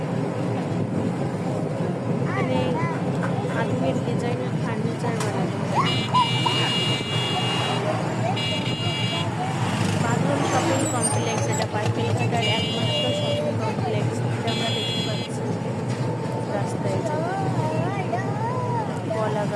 এখানে আধুনিক ডিজাইনের ফার্নিচার বানানো হয়। বাঁধন শপিং কমপ্লেক্স, এটা পাটকেলঘাটার একমাত্র শপিং কমপ্লেক্স, এটা আমরা দেখতে পাচ্ছি রাস্তায়। কলা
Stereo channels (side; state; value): both; identical; correlation 1.00